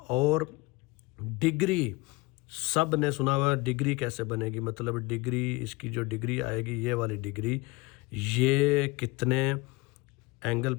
और डिग्री, सब ने सुना हुआ डिग्री कैसे बनेगी, मतलब डिग्री, इसकी जो डिग्री आएगी ये वाली डिग्री, ये कितने एंगल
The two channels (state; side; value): quieter; right; 23.6 dB